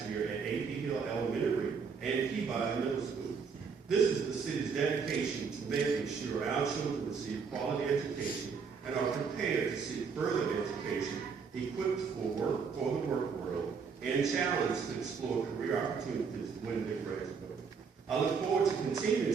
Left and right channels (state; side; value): quieter; left; 5.8 dB